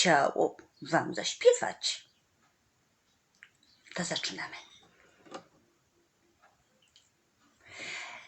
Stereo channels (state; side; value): identical; both; correlation 1.00